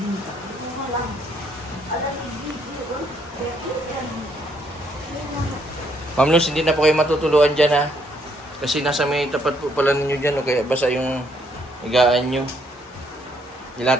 Ito nga lang. Alam, nagbibinta. Ma'am Luz, hindi na po kayo matutuluan dyan ha. Kasi nasa may tapat po pala ninyo dyan o kaya basa yung higaan nyo.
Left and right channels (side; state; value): both; normal; correlation 0.70